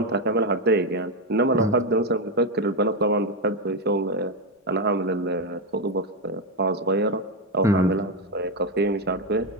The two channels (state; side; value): normal; both; correlation 0.08